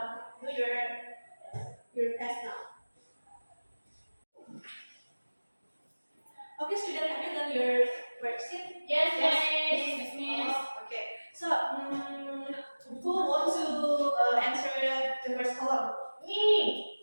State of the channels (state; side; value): inverted; both; correlation -1.00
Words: do your test now. Okay, student, have you done your worksheet? Yes. Okay. So, who wants to answer the first column? Me.